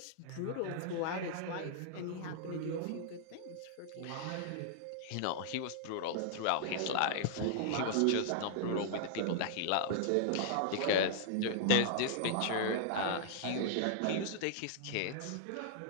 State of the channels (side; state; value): both; different; correlation -0.01